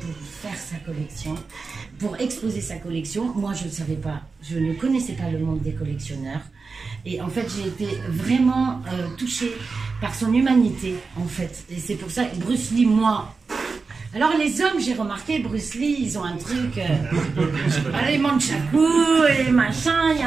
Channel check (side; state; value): left; quieter; 4.5 dB